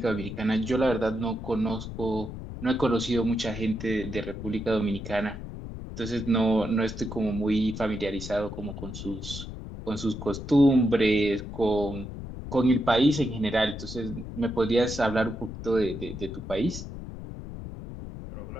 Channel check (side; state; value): left; noise; rumble, 9 dB below the sound